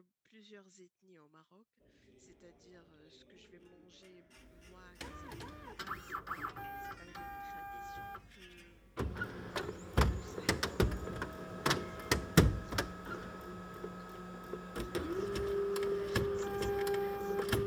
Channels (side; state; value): both; identical; correlation 1.00